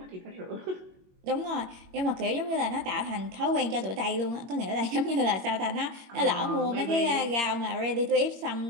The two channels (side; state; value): left; late; 21 ms